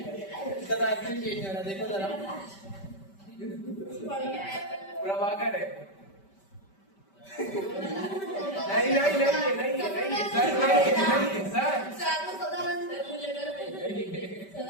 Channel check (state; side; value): late; right; 5.1 ms